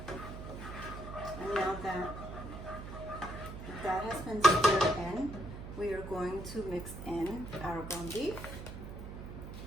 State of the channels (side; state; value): right; noise; hum, 10 dB below the sound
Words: And now that has been stirred in, we are going to mix in our ground beef.